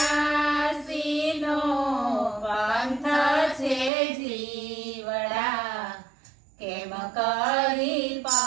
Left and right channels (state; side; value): drops out; left; at 3.9 s